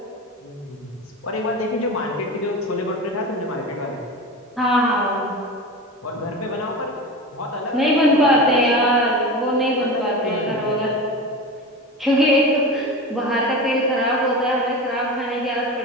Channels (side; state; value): both; normal; correlation 0.27